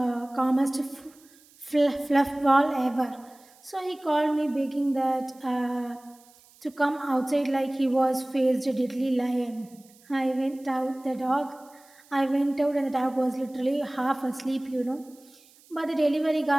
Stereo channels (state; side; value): noise; right; hiss, 28 dB below the sound